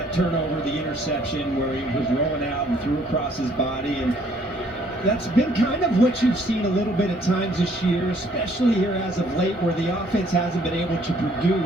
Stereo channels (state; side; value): normal; both; correlation 0.62